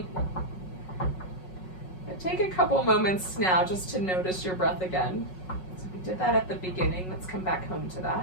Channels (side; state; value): right; late; 5.4 ms